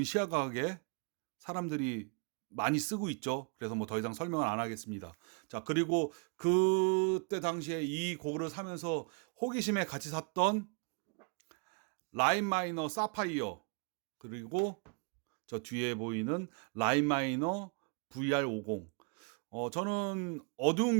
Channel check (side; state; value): left; quieter; 35.3 dB